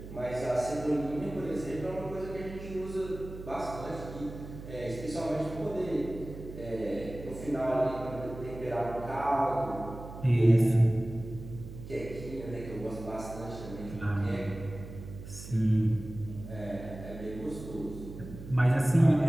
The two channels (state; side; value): noise; right; hum, 12 dB below the sound